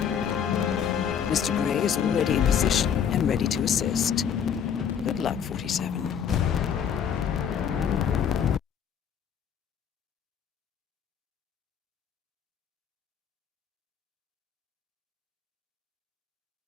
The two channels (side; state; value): right; quieter; 8.0 dB